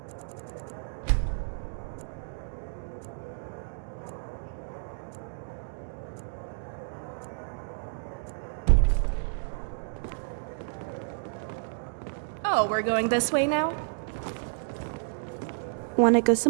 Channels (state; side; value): silent; left; digital silence